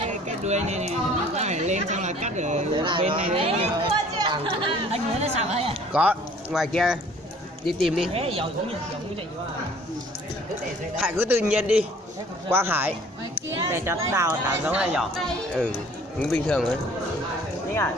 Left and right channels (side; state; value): both; normal; correlation 0.53